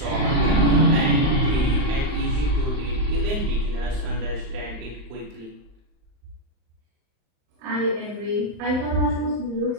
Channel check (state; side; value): late; left; 39 ms